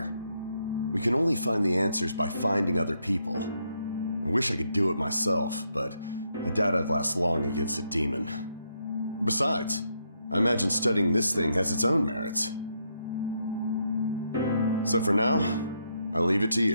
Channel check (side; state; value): both; inverted; correlation -0.78